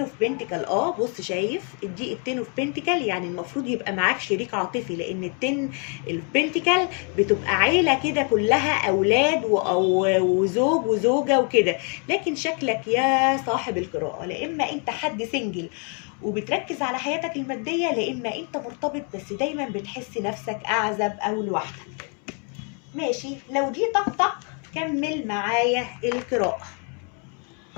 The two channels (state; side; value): quieter; right; 39.0 dB